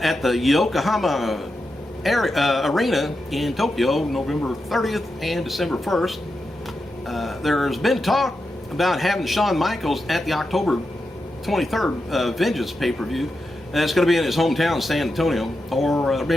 the Yokohama Arena in Tokyo, November 30th and December 1st. There's been talk about having Shawn Michaels at the October 23rd Vengeance pay-per-view. And it's going to be in his hometown, San Antonio, or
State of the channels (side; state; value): both; normal; correlation 0.88